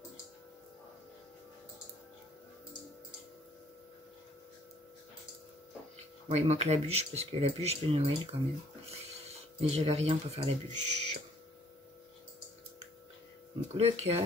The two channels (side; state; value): both; normal; correlation 0.61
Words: Bon, il manque la bûche, parce que la bûche de Noël, quand même. Mais j'avais rien pour faire la bûche. Donc, le